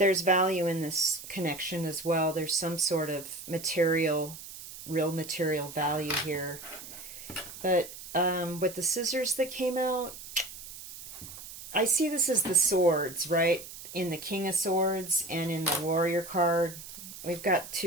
value in this connection as well. There's some sort of material, real material value here. But with the scissors that came out, I see this as the swords, right? In the King of Swords and in the Warrior card. We've got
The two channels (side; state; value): right; noise; hiss, 13 dB below the sound